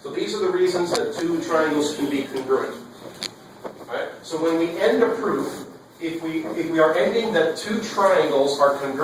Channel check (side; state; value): both; identical; correlation 1.00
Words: So these are the reasons that 2 triangles can be congruent. Alright? So when we end a proof, if we are ending that 2 triangles are